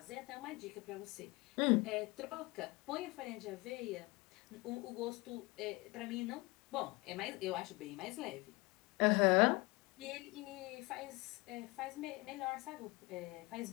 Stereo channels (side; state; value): right; quieter; 24.1 dB